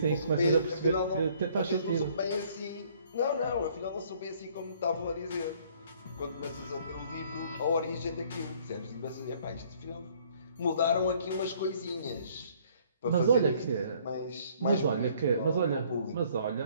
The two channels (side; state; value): both; inverted; correlation -0.60